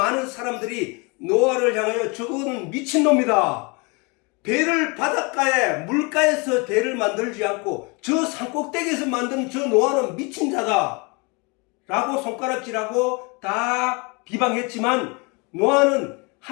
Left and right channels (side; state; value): right; quieter; 29.7 dB